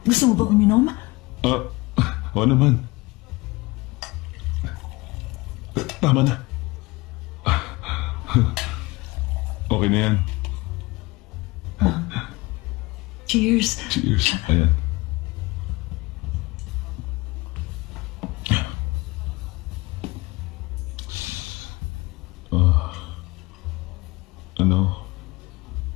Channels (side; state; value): right; quieter; 22.5 dB